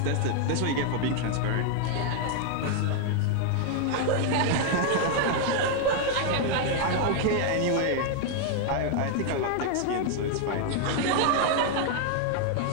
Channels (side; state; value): both; different; correlation 0.00